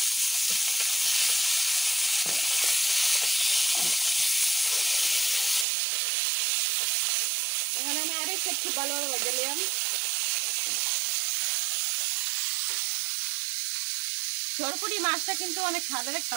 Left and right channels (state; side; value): drops out; left; at 5.7 s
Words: এখানে আমি আরেক সাইড খুব ভালোভাবে ভেজে নিলাম। সরপুঁটি মাছটা কিন্তু অনেক স্বাদের